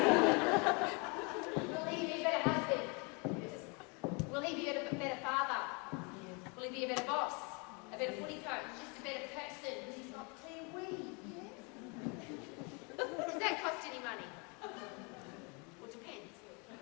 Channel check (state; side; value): quieter; right; 32.1 dB